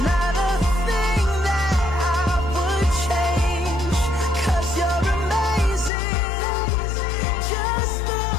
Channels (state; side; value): drops out; right; at 5.9 s